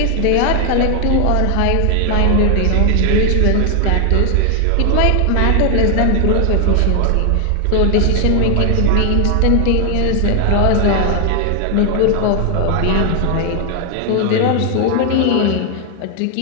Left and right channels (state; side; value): different; both; correlation 0.00